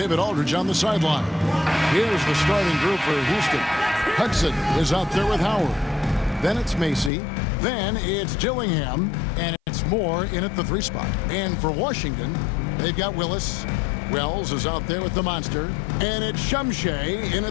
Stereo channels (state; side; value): drops out; right; at 7.1 s